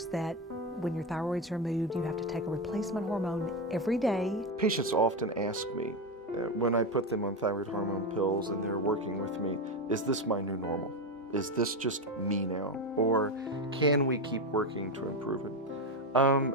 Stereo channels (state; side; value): normal; both; correlation 0.13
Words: that when your thyroid's removed, you have to take a replacement hormone every day. Patients often ask me, when I put them on thyroid hormone pills and they're working with me, is this my new normal? Is this just me now? Or can we keep working to improve it?